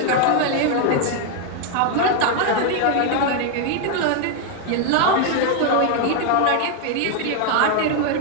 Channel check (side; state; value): both; different; correlation 0.01